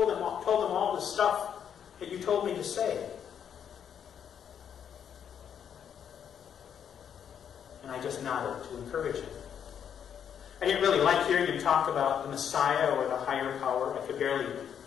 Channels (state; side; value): quieter; right; 8.4 dB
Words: them all the stuff that you told me to say." And I just nodded to encourage him. I didn't really like hearing him talk about the Messiah or the higher power. I could barely